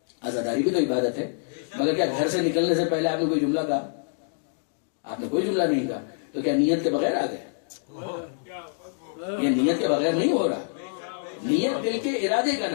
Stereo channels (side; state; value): right; silent; digital silence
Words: عزاداری بھی تو عبادت ہے، مگر کیا گھر سے نکلنے سے پہلے آپ نے کوئی جملہ کہا؟ آپ نے کوئی جملہ نہیں کہا، تو کیا نیت کے بغیر آ گئے؟ یہ نیت کے بغیر نہیں ہو رہا. نیت دل کے ارادے کا